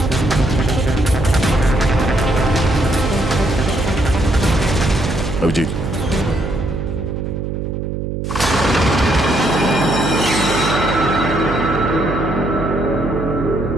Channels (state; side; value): noise; right; hum, 4 dB below the sound